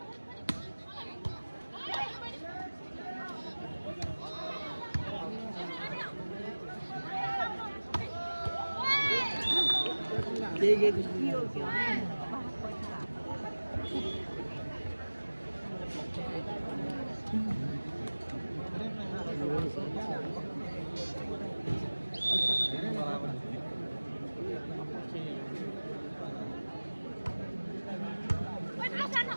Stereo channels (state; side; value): inverted; both; correlation -1.00